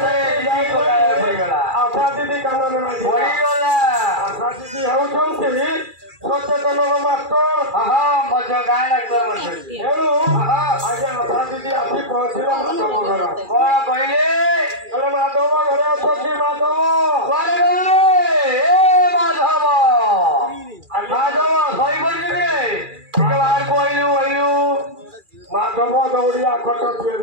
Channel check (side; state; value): left; late; 2.4 ms